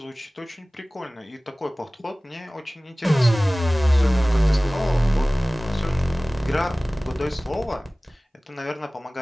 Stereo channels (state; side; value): normal; both; correlation 0.98